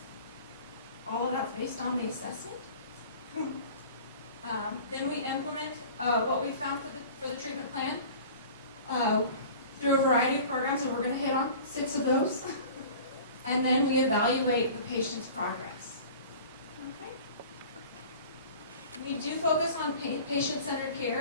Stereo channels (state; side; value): inverted; both; correlation -0.42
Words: All of that's based on the assessment. Then we implement what we found for the treatment plan through a variety of programs, and we're going to hit on 6 of those. And then we evaluate the patient's progress. Okay. We do focus on patient-centered